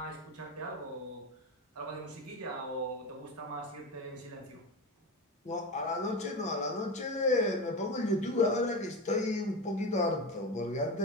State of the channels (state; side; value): normal; both; correlation 0.22